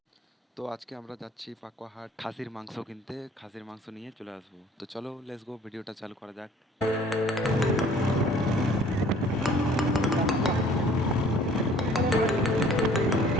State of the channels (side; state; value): both; normal; correlation 0.54